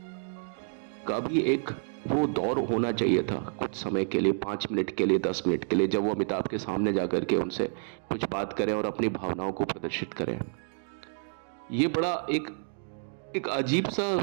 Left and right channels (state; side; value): silent; left; digital silence